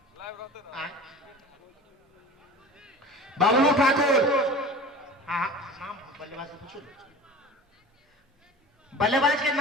बाबलू ठाकुर। हाँ नाम बल्लेबाज से पूछो। बल्लेबाज के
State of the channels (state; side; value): normal; both; correlation 0.38